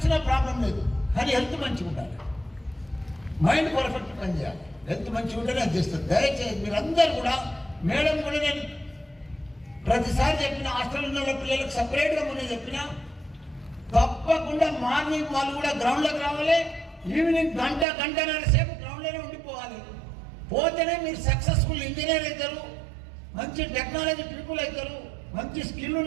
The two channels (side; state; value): left; drops out; at 17.9 s